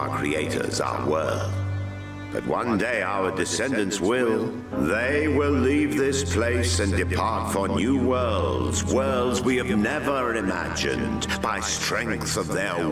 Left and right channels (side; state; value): both; identical; correlation 1.00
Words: creators, our world. But one day our descendants will. They will leave this place and depart for new worlds, worlds we have never imagined, by strength of their